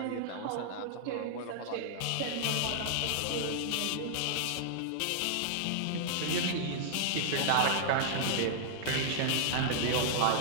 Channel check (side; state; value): both; different; correlation -0.01